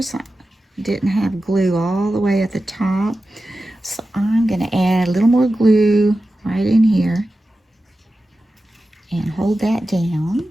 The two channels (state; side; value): normal; both; correlation 0.93